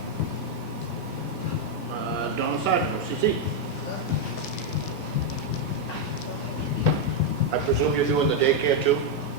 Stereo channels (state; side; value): normal; both; correlation 0.01